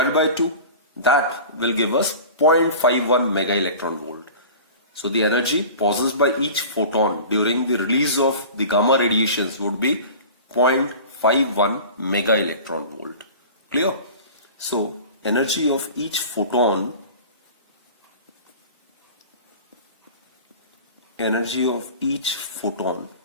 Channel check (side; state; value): both; inverted; correlation -0.38